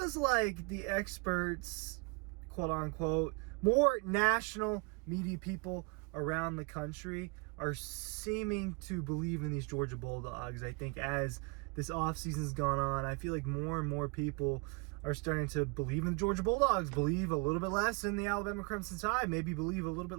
like the experts, quote-unquote, more national media people around the country are seeming to believe in these Georgia Bulldogs. I think as this offseason's gone on, I feel like more and more people are starting to believe in the Georgia Bulldogs, believe a little bit less in the Alabama Crimson Tide, maybe believe a little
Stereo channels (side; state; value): left; quieter; 30.8 dB